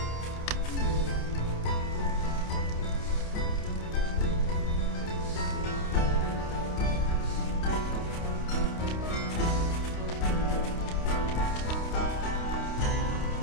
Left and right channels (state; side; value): late; right; 29 ms